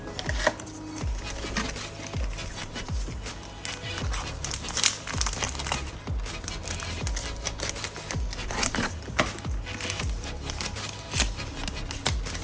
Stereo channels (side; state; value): both; identical; correlation 1.00